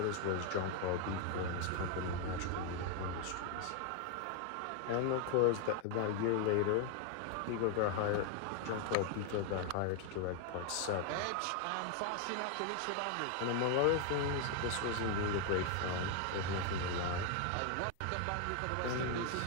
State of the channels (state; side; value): different; both; correlation 0.01